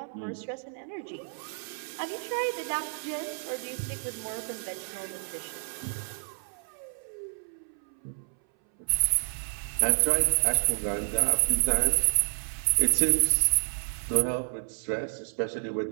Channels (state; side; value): silent; left; 58 dB below the other